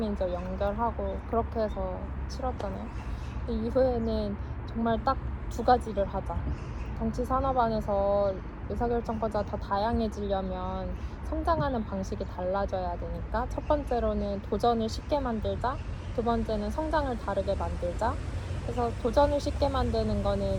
연결하고 그렇게 해서 치렀잖아요. 그 이후에는 정말 딱 2가지를 하자. 정치 산업 안에서 의사결정권자가 더 다양해지려면 성장하는 방식이 달라져야 되니까 첫 번째로는 도전을 쉽게 만들자, 두 번째는 성장을 다르게 만들자. 그래서 도전을 쉽게 만드는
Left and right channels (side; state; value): both; identical; correlation 1.00